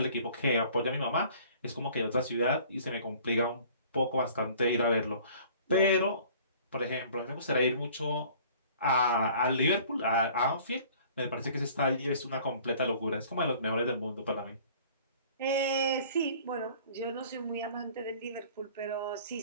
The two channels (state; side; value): inverted; both; correlation -0.51